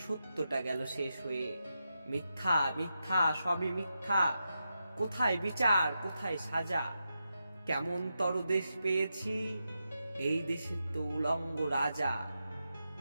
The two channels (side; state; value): both; inverted; correlation -0.87